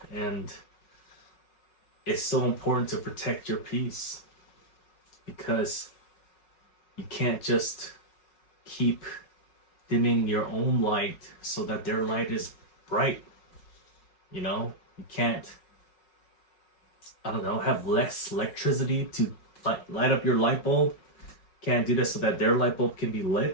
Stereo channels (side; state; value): right; late; 5.3 ms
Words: And it's so important to protect your peace, because you can't just keep dimming your own light so that their light is bright. You can't, have less electricity to light up your light bulb. Can't do this so that their light bulb can be